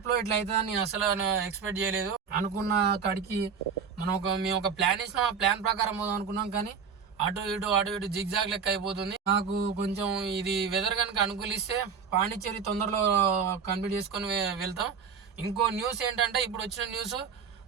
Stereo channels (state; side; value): quieter; left; 6.3 dB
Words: ఇట్లా అవుతుందని నేను అసలు ఎక్స్పెక్ట్ చేయలేదు. అనుకున్న కాడికి మేము ఒక ప్లాన్ వేసినాం. ఆ ప్లాన్ ప్రకారం పోదాం అనుకున్నాం, కానీ అటు ఇటు జిగ్జాగ్ లెక్క అయిపోతుంది. నాకు కొంచెం ఇది వెదర్ కనుక అనుకూలిస్తే పాండిచేరి తొందరలో కంప్లీట్ చేసుకొని వెళ్తాం. ఇంకో న్యూస్ ఏంటంటే, ఇప్పుడు వచ్చిన న్యూస్